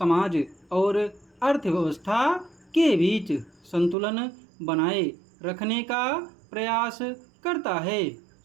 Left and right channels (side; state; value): left; drops out; at 4.0 s